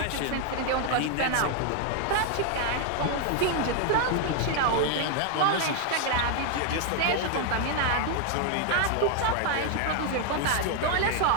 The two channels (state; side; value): different; both; correlation 0.00